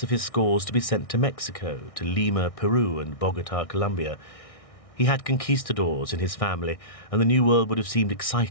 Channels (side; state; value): right; late; 1.6 ms